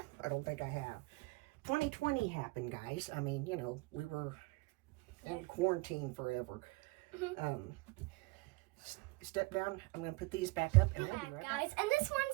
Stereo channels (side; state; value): left; quieter; 24.6 dB